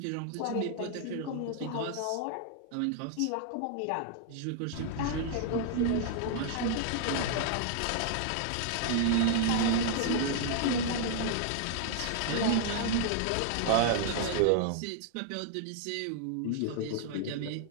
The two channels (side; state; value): both; different; correlation -0.01